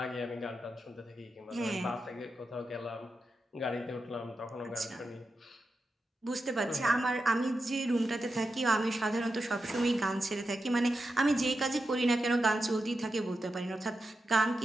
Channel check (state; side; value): normal; both; correlation 0.89